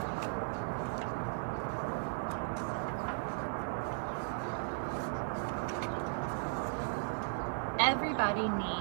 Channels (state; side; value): silent; left; 54 dB below the other